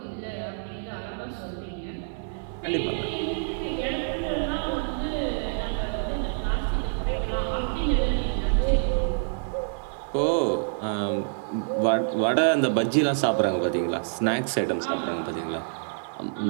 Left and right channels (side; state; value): left; silent; 60 dB below the other